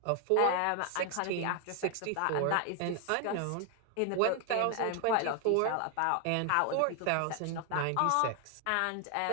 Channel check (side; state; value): both; different; correlation 0.00